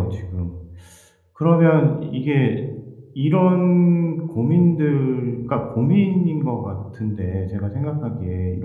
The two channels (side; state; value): both; identical; correlation 1.00